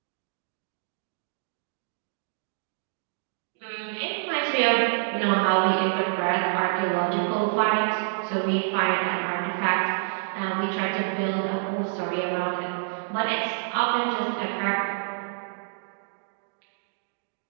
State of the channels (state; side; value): silent; left; digital silence